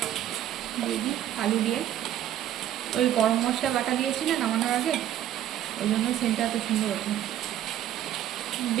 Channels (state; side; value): quieter; left; 11.6 dB